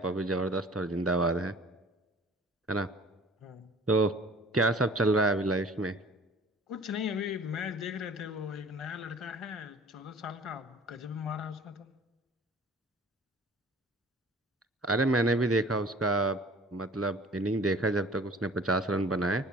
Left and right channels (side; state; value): both; normal; correlation 0.48